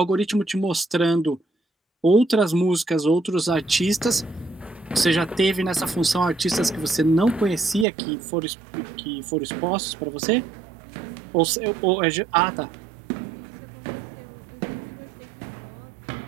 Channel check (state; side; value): drops out; left; at 7.9 s